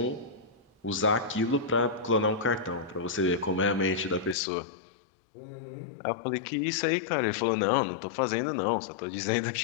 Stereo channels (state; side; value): drops out; right; at 4.4 s